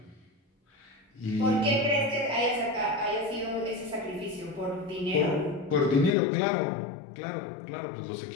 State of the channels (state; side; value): drops out; right; at 6.1 s